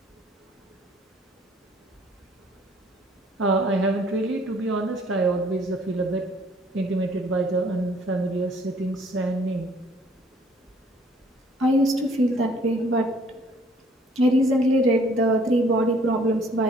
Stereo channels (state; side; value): normal; both; correlation 0.60